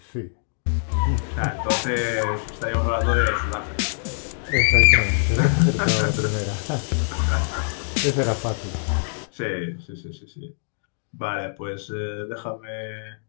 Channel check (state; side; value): silent; right; digital silence